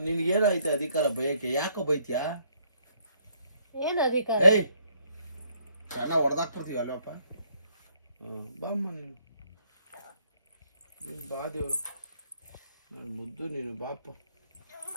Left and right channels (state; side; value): inverted; both; correlation -0.68